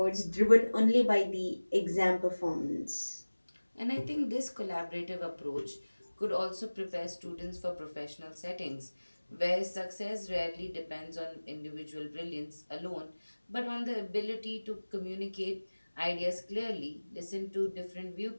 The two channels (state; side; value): inverted; both; correlation -1.00